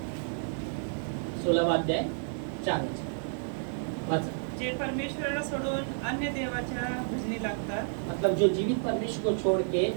16वां अध्याय 4 वचन। जे परमेश्वराला सोडून अन्य देवाच्या भजनी लागतात, मतलब जो जीवित परमेश्वर को छोड़ के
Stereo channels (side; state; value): left; silent; digital silence